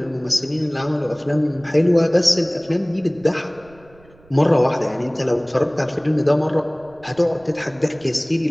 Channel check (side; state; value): right; noise; rumble, 27 dB below the sound